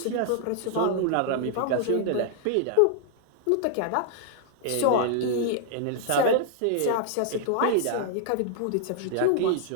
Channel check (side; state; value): both; different; correlation -0.01